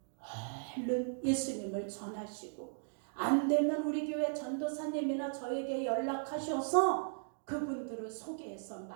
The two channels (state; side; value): silent; left; digital silence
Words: 얼른 예수님을 전하시고, 안 되면 우리 교회 전도사님이나 저에게 연락하셔서 그분들을 소개해서